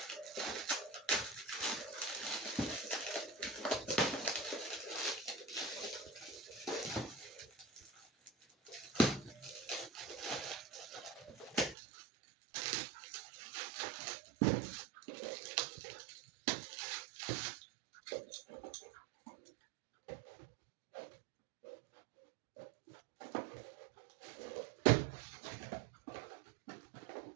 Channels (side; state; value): left; drops out; at 11.8 s